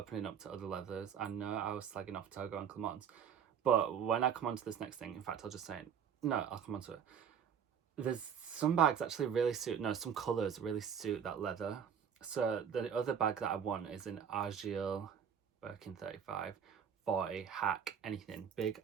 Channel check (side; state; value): left; quieter; 7.8 dB